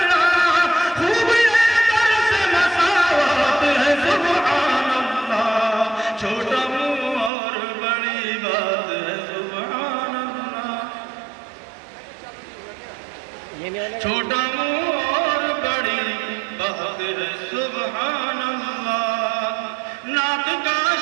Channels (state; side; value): drops out; left; at 7.3 s